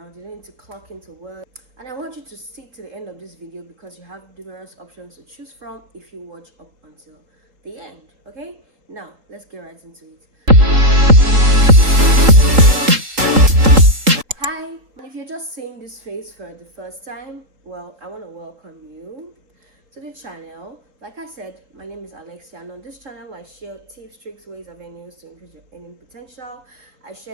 you don't need to clock into work. And I want you to stick to the end of this video because you have numerous options to choose from if you watch up until the end. Okay, now let's get right into it. Hi, if you're just seeing this face for the first time, well, I want to welcome you to the channel. Like I said, my name is Alexia, and on this channel I share tips, tricks, ways, avenues to increase your earning potential. I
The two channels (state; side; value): late; left; 3.8 ms